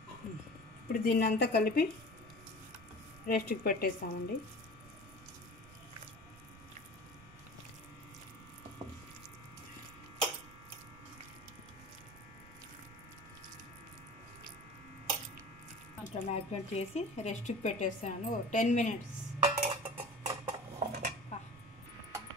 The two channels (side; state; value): right; noise; rumble, 19 dB below the sound